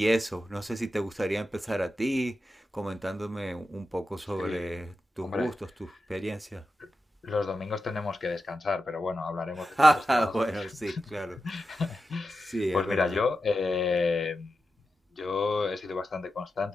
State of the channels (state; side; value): normal; both; correlation 0.90